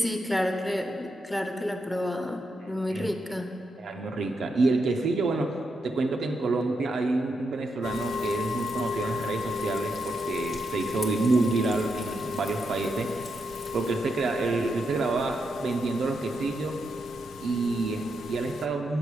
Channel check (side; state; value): both; normal; correlation 0.83